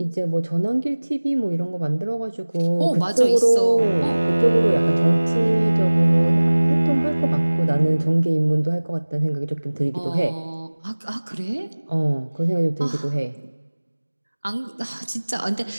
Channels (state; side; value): inverted; both; correlation -1.00